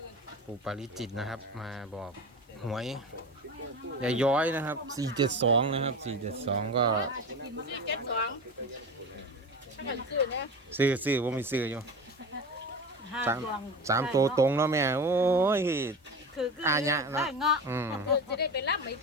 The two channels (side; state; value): both; normal; correlation 0.28